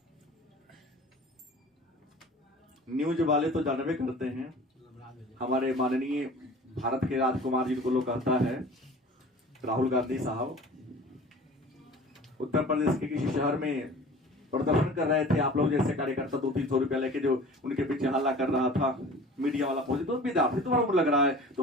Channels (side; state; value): both; normal; correlation 0.43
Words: न्यूज वाले तो जानवे करते हैं। हमारे माननीय भारत के राजकुमार जिनको लोग कहता है राहुल गांधी साहब, उत्तर प्रदेश के किसी शहर में प्रदर्शन कर रहे थे। आप लोग जैसे कार्यकर्ता 200-300 रुपया लेके जो उनके पीछे हल्ला कर रहा था, मीडिया वाला पहुंचे तो विद्यार्थी तुम्हारा उम्र लग रहा है,